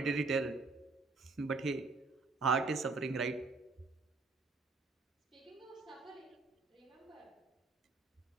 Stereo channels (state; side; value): quieter; left; 3.9 dB